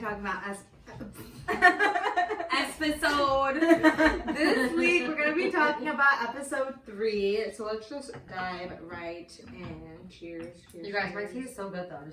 about Episode. This week we're gonna be talking about episode 3. So let's just dive right in. Cheers. You guys, my tea is so good though,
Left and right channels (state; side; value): identical; both; correlation 1.00